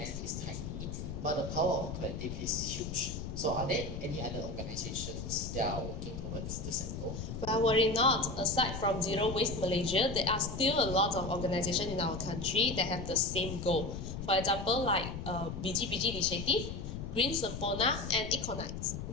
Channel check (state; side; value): noise; left; rumble, 6 dB below the sound